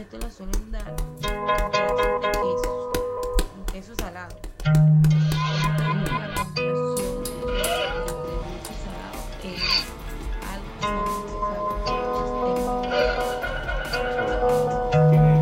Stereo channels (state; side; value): identical; both; correlation 1.00